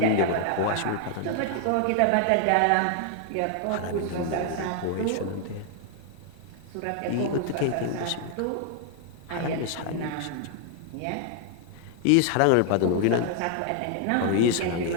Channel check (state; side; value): different; both; correlation 0.00